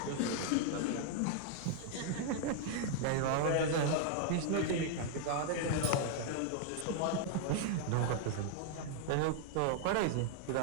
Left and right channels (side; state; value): both; different; correlation 0.00